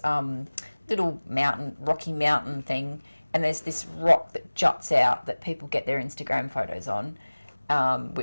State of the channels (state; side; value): inverted; both; correlation -1.00